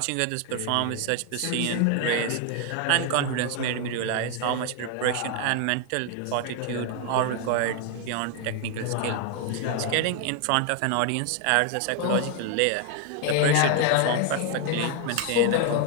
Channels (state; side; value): different; both; correlation 0.00